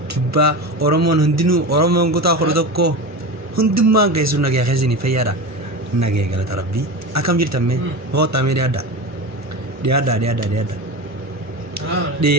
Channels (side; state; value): both; normal; correlation 0.25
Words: kibba oromon hundinu oromon gota khordokko hundumma gaisu nage khazini fayara nage galata rabbi akam jirta me hota me